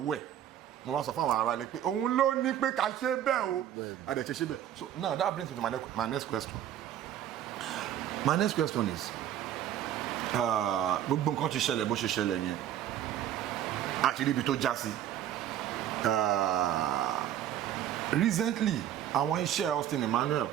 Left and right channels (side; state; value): left; quieter; 11.0 dB